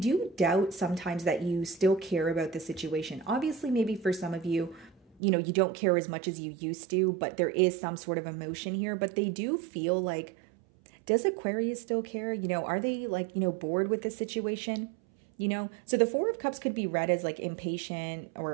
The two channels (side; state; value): left; drops out; at 5.2 s